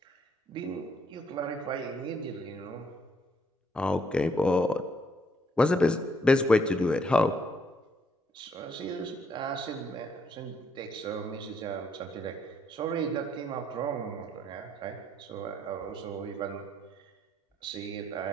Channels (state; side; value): normal; both; correlation 0.70